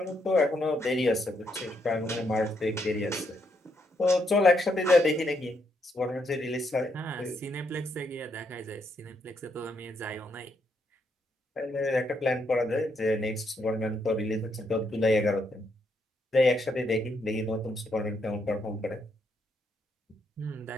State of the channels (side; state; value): both; normal; correlation 0.76